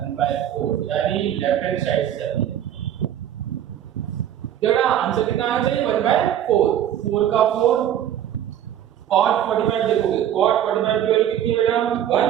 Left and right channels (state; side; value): quieter; left; 10.7 dB